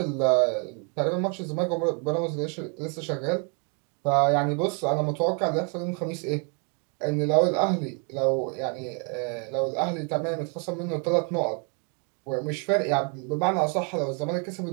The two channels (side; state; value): left; quieter; 36.5 dB